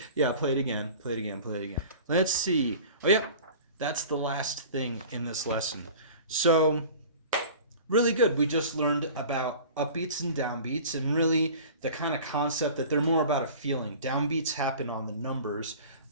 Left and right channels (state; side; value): inverted; both; correlation -0.41